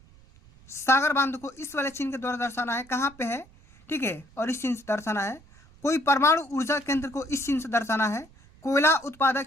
सागर बांध को इस वाले चिन्ह के द्वारा दर्शाना है। कहाँ पे है? ठीक है, और इस चिन्ह से दर्शाना है। कोई परमाणु ऊर्जा केंद्र को इस चिन्ह से दर्शाना है। कोयला उत्पादक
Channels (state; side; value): noise; right; rumble, 26 dB below the sound